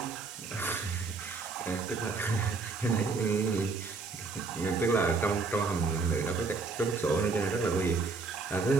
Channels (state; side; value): quieter; left; 4.2 dB